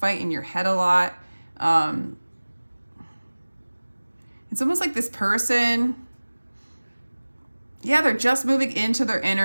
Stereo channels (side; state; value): both; inverted; correlation -1.00